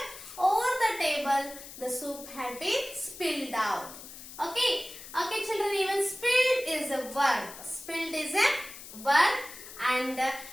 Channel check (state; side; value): noise; left; hiss, 14 dB below the sound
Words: Over the table, the soup had been spilled out. Okay. Okay, children. Even spilled is a verb. Spilled is a verb. And